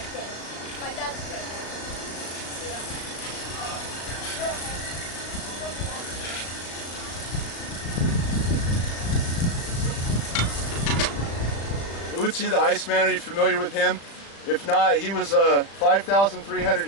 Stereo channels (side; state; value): right; late; 35 ms